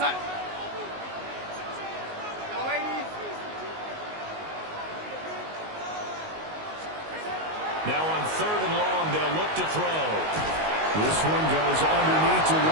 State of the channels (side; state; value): left; late; 19 ms